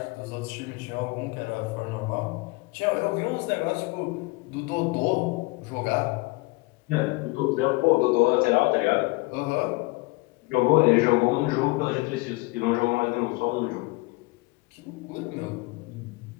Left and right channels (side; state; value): right; quieter; 24.5 dB